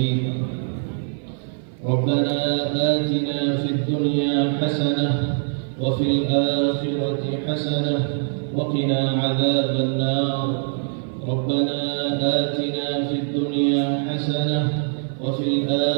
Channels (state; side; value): silent; left; 56 dB below the other